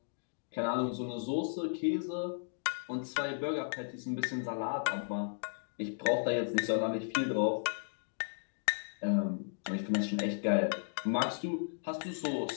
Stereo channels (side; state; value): right; silent; digital silence